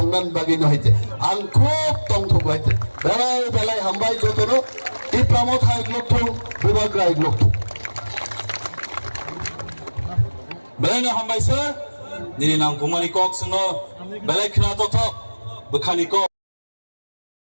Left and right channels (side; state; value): both; inverted; correlation -1.00